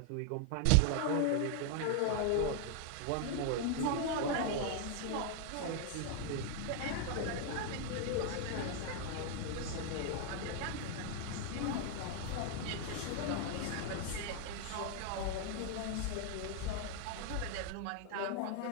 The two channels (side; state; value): both; different; correlation 0.00